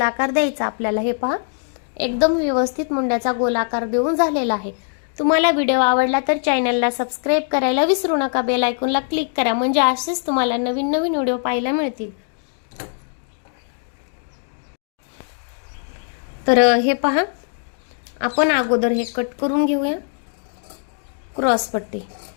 द्यायचा आपल्याला. हे पहा, एकदम व्यवस्थित मुंड्याचा गोलाकार देऊन झालेला आहे. तुम्हाला व्हिडिओ आवडला तर चॅनलला सबस्क्राईब करायला विसरू नका. बेल आयकॉनला क्लिक करा, म्हणजे असेच तुम्हाला नवीन नवीन व्हिडिओ पाहायला मिळतील. तर हे पहा, आपण अगोदर हे कट करून घेऊया क्रॉसपट्टी.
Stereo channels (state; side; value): silent; right; 65 dB below the other